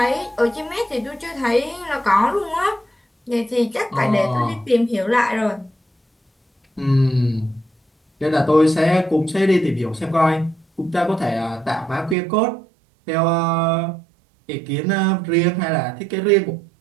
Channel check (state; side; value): drops out; left; at 12.2 s